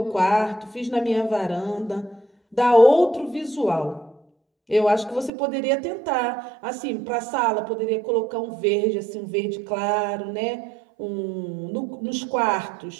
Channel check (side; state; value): left; drops out; at 5.3 s